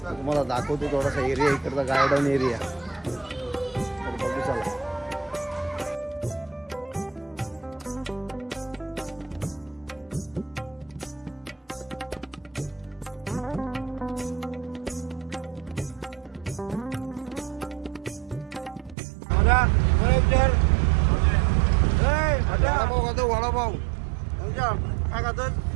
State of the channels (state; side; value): drops out; left; at 18.9 s